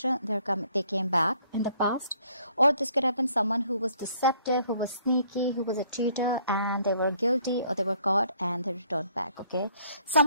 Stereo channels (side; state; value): both; inverted; correlation -0.64